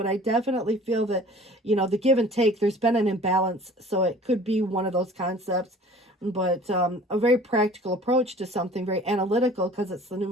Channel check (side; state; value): both; normal; correlation 0.47